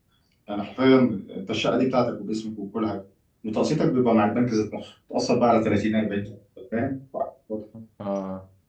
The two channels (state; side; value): identical; both; correlation 1.00